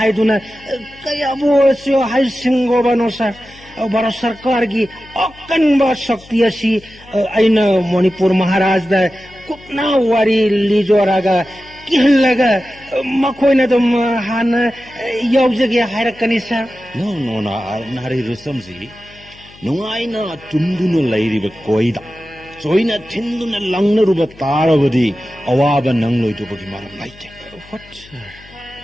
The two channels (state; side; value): noise; left; hum, 23 dB below the sound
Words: kaya bo sio hai singo bano sa Bharat Sarkar gi akan ba shakti asi aina Manipur Maharaj da kupna wari lijoraga kihlaga makhoi na dum han yaujage hairakani sa no na nari rusamji nungai na tunduna lairiba koida Soina tinduna langna ruba taravadi awaba nangloi to bagi maram laite what